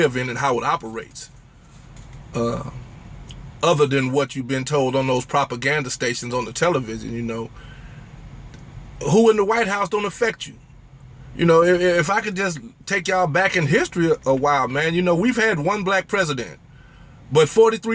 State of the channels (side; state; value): both; identical; correlation 1.00